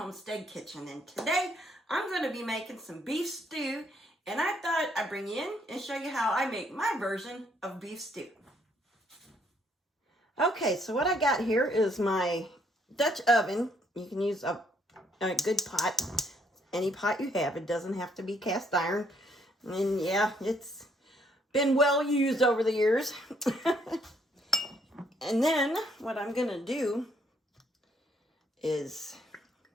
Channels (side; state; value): both; normal; correlation 0.69